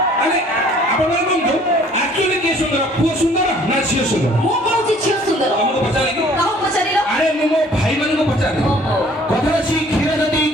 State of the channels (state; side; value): normal; both; correlation 0.56